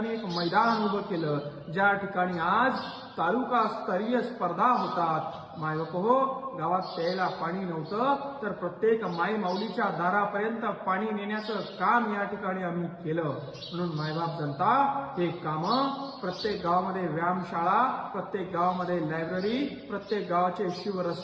एक मैदान उभं केलं, ज्या ठिकाणी आज तालुका स्तरीय स्पर्धा होतात. मायबाप हो, गावात प्यायला पाणी नव्हतं, तर प्रत्येक माई माऊलीच्या दारापर्यंत पाणी नेण्याचं काम या ठिकाणी आम्ही केलं. म्हणून मायबाप जनता हे कामं प्रत्येक गावामध्ये व्यायामशाळा, प्रत्येक गावामध्ये लायब्ररी, प्रत्येक गावाचे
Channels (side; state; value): both; identical; correlation 1.00